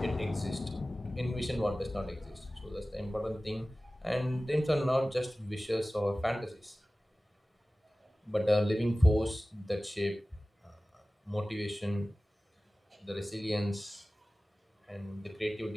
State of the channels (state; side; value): normal; both; correlation 0.97